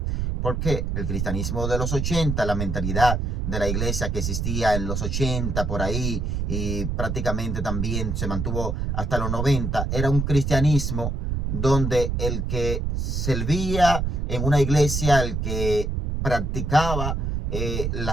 Porque el cristianismo de los 80, la mentalidad de la iglesia que existía en los 80 por ahí y prácticamente también se mantuvo hasta los 90, era un cristianismo donde el que servía en una iglesia, el que practicaba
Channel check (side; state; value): right; noise; rumble, 1 dB below the sound